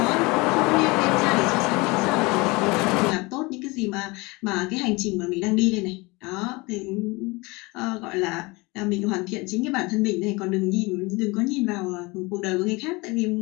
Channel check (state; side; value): quieter; right; 24.8 dB